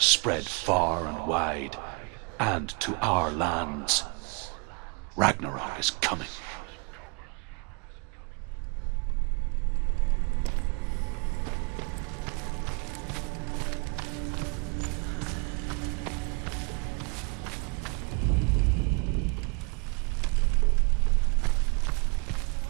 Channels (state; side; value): quieter; left; 33.6 dB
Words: far and wide, and to our lands. Ragnarok is coming.